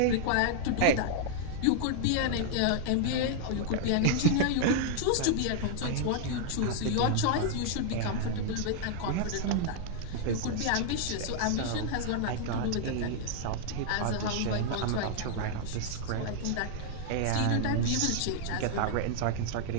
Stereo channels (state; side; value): different; both; correlation -0.01